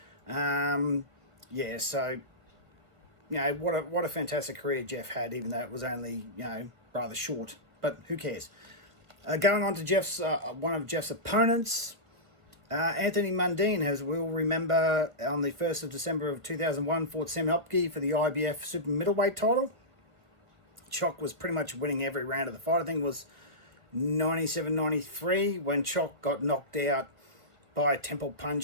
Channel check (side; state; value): left; late; 1.6 ms